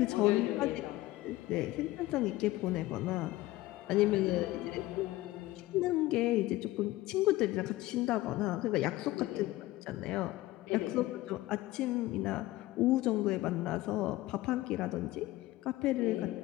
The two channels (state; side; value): quieter; right; 17.6 dB